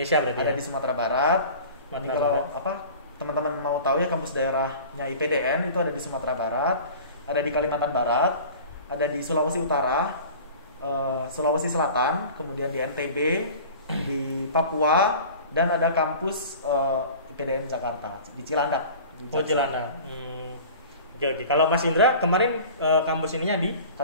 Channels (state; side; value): inverted; both; correlation -0.41